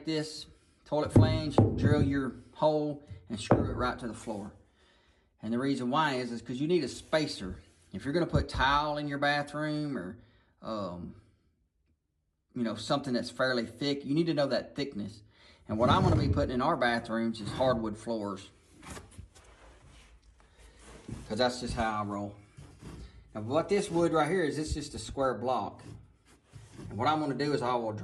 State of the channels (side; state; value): both; identical; correlation 1.00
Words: this toilet flange, drill your hole, and screw it right to the floor. And the reason why is because you need a spacer. If you're going to put tile in your bathroom or, you know, something that's fairly thick, you need to know that thickness. And what I'm going to be putting in our bathrooms is hardwood floors, because that's just how I roll. Now, what this wood right here is, it's just a square block. And what I'm going to do is I will